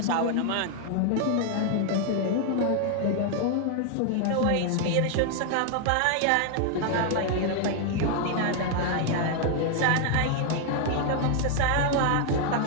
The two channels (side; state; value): both; different; correlation 0.00